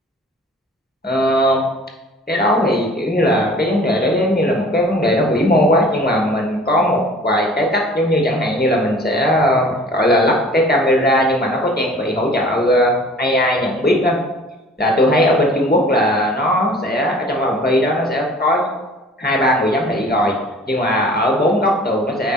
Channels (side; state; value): both; normal; correlation 0.48